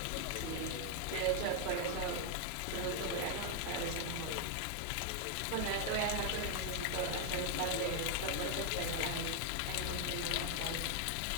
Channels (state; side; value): different; both; correlation 0.00